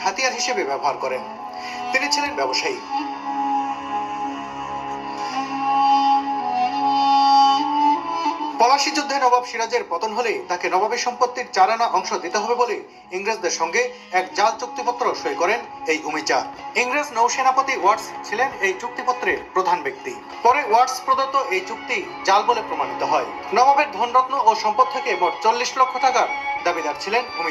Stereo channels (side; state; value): both; identical; correlation 1.00